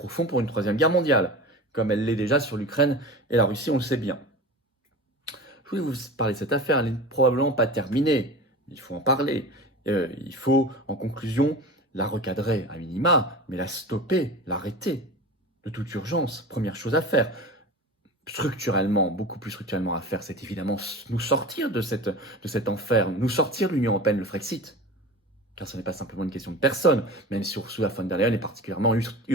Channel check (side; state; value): both; normal; correlation 0.33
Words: pour une troisième guerre mondiale, comme elle l'est déjà sur l'Ukraine et la Russie, on le sait bien. Je voulais vous parler de cette affaire, elle n'est probablement pas terminée, il faut en parler. Il faut, en conclusion, la recadrer à minima, mais la stopper, l'arrêter, de toute urgence. Première chose à faire. Structurellement, beaucoup plus structurellement à faire, c'est évidemment nous sortir de cet enfer, nous sortir de l'Union européenne, le Frexit. Car ce n'est pas simplement une question de personne, même si Ursula von der Leyen est particulièrement